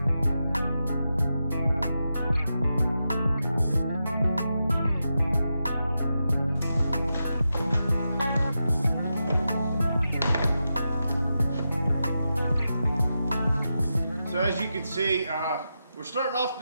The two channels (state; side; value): inverted; both; correlation -0.89